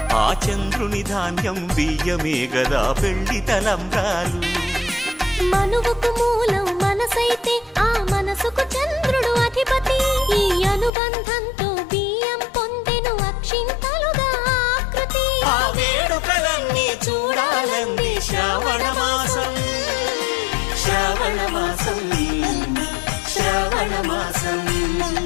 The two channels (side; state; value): right; drops out; at 10.9 s